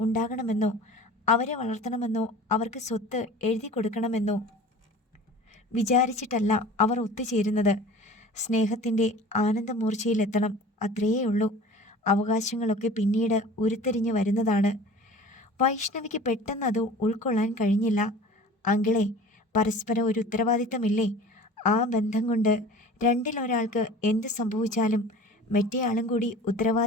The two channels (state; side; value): normal; both; correlation 0.42